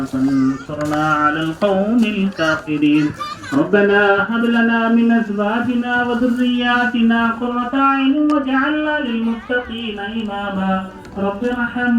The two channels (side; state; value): both; identical; correlation 1.00